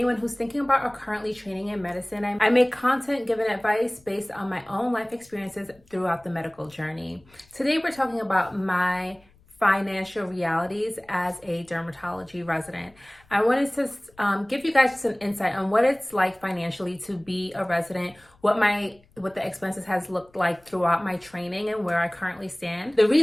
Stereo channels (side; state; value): left; noise; rumble, 30 dB below the sound